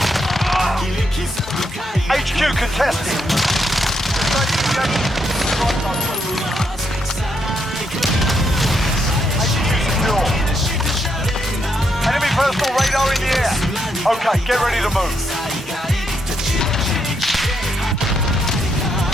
HQ contested. HQ secure. Enemy personal radar in the air. Okay, get ready to move.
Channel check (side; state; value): both; normal; correlation 0.78